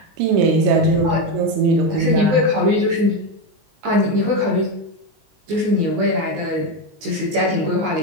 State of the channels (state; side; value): late; left; 19 ms